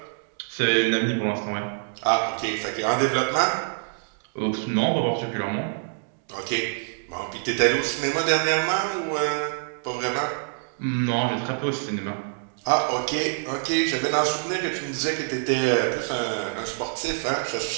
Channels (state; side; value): silent; left; digital silence